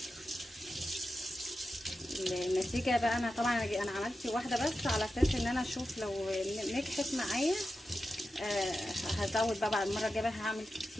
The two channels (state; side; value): normal; both; correlation 0.91